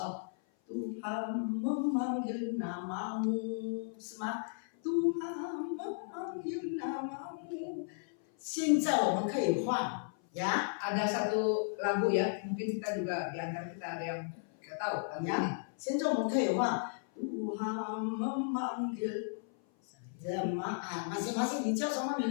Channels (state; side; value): silent; right; 55 dB below the other